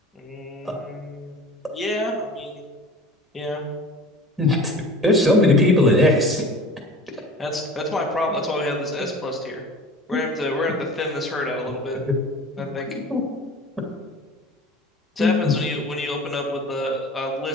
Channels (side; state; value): both; normal; correlation 0.40